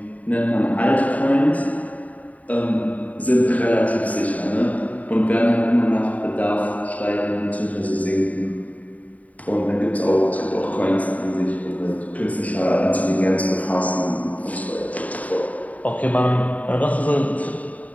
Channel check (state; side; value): late; right; 0.071 ms